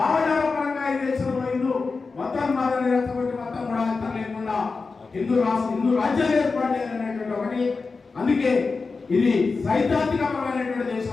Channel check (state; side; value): quieter; right; 4.3 dB